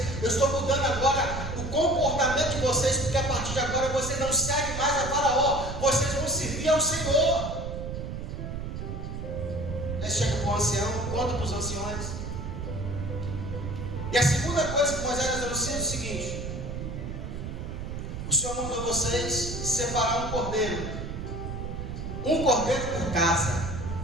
Eu estou mudando agora o comportamento de vocês, porque a partir de agora vocês não seguem mais a faraó, vocês vão servir ao Senhor. Aí chega para o ancião, conta para os anciões. E a segunda coisa que Moisés nos anuncia é o seguinte: o Senhor mandou vocês separar um cordeiro por casa.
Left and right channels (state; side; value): noise; right; rumble, 6 dB below the sound